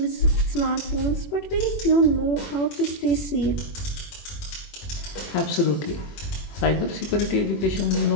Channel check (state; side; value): late; right; 21 ms